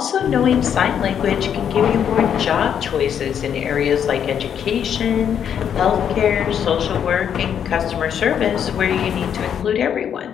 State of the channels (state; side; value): quieter; right; 8.6 dB